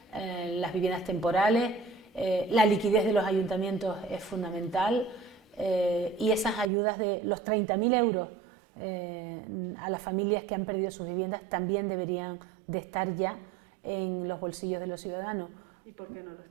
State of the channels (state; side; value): drops out; left; at 6.7 s